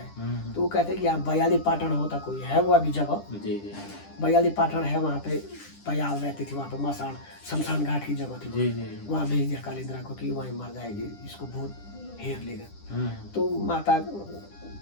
तो वो कहते हैं कि यहाँ बयाली पाटन होता कोई है, वो अभी जगह बयाली पाटन है, वहाँ पे बयाल रहती थी, वहाँ पे मसान शमशान घाट की जगह थी, वहाँ भेज दिया कालिंद्रा को कि वहीं मर जाएगी, इसको भूत घेर लेगा। तो माता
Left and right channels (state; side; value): late; right; 10 ms